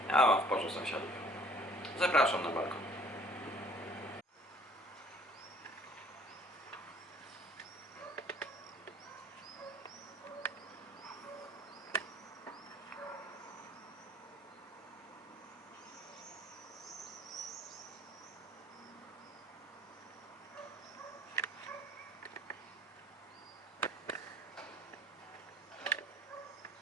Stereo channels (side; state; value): both; normal; correlation 0.54